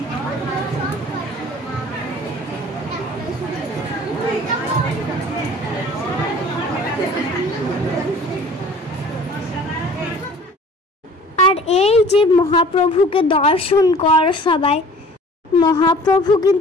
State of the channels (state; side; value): normal; both; correlation 0.48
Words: আর এই যে মহাপ্রভুকে দর্শন কর সবাই, মহাপ্রভু